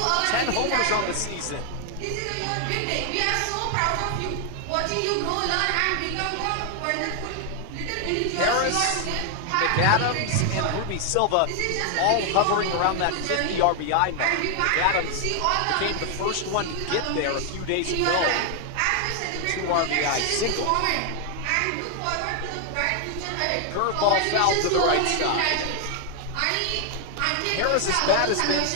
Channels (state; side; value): different; both; correlation 0.00